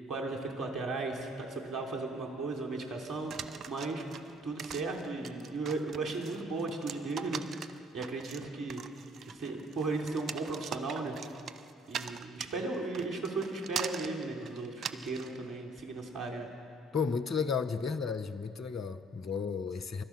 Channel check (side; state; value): both; normal; correlation 0.59